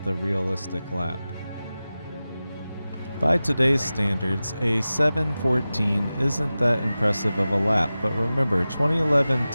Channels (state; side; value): inverted; both; correlation -0.95